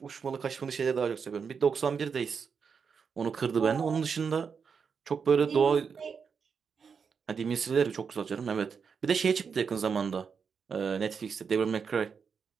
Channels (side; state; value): left; quieter; 6.1 dB